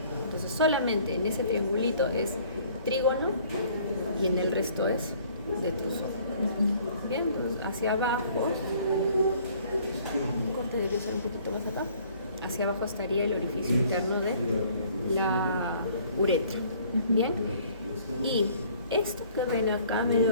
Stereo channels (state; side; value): inverted; both; correlation -0.57